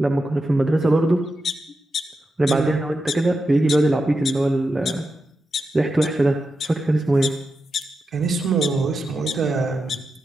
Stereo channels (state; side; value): normal; both; correlation 0.89